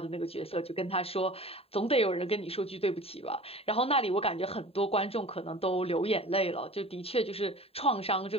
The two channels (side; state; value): right; late; 0.28 ms